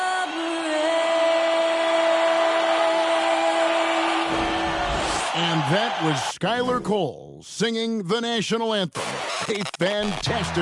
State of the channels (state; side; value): identical; both; correlation 1.00